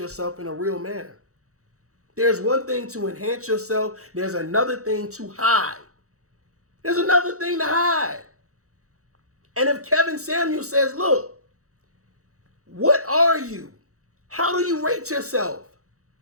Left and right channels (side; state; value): left; late; 0.65 ms